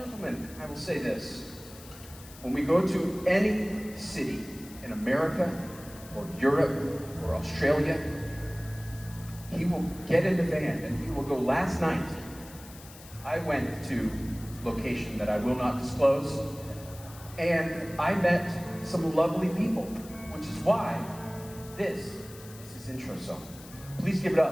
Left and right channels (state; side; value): noise; left; hiss, 18 dB below the sound